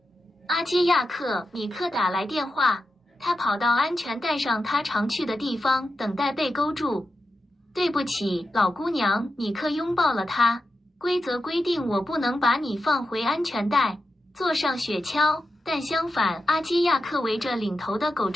阿基亚克，米克打来电话，他跑到安全带上他常去的地方，等待被勾住。对不起，老姑娘，米克拥抱了她。规则规定我不能把你放回安全带，坐上雪橇。但相反，阿基亚克围着领头的狗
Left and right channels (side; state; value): both; normal; correlation 0.90